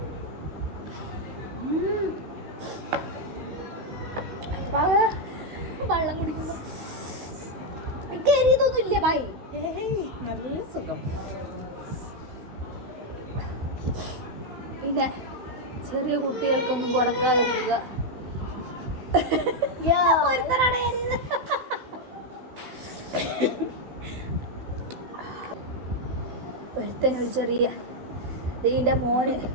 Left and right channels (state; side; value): late; left; 16 ms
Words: വെള്ളം കുടിക്കുന്നു. കരിയതൊന്നും ഇല്ല ഭായി. നല്ല സുഖം. പിന്നെ ചെറിയ കുട്ടികൾക്കൊന്നും കൊടുക്കാതിരിക്കുക. ഒരുത്തനൊരു ചെറിയ ഇതിൻ്റെ മോന്